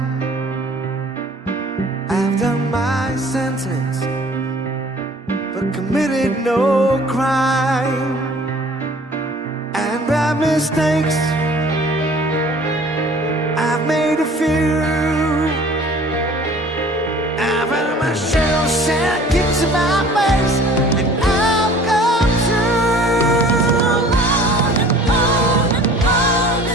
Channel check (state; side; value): normal; both; correlation 0.50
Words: I've done my sentence but committed no crime. And by mistakes I've made a few. I've had my share of sad kicks in my face, and I've come through.